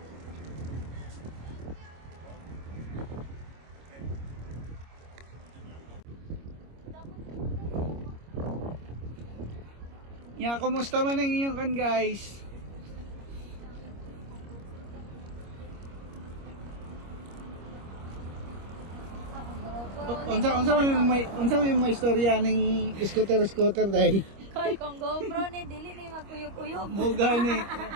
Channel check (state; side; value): late; left; 25 ms